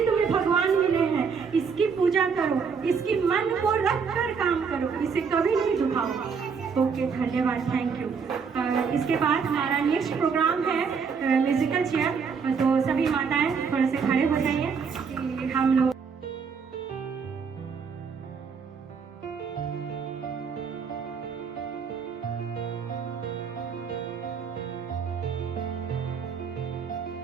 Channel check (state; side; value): quieter; left; 5.9 dB